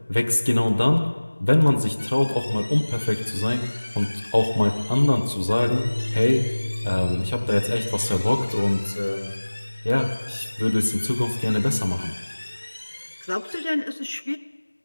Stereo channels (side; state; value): both; inverted; correlation -1.00